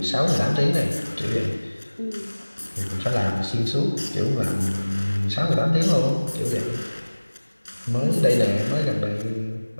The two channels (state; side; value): inverted; both; correlation -1.00